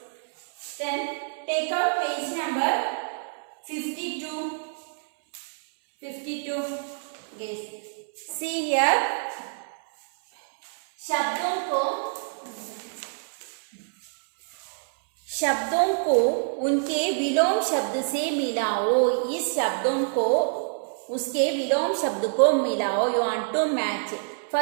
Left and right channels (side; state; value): left; silent; 60 dB below the other